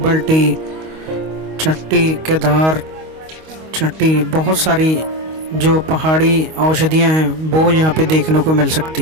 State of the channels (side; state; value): left; late; 25 ms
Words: टी, चट्टी, केदार चट्टी, बहुत सारी जो पहाड़ी औषधियाँ हैं वो यहाँ पे देखने को मिल सकती